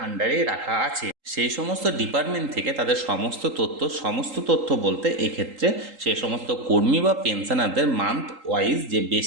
আন্ডারেই রাখা আছে। সেই সমস্ত ডিপার্টমেন্ট থেকে তাদের সমস্ত তথ্য বলতে এক্ষেত্রে সেই সমস্ত কর্মী বা পেনশনারদের মান্থ ওয়াইজ যে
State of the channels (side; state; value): left; late; 3.8 ms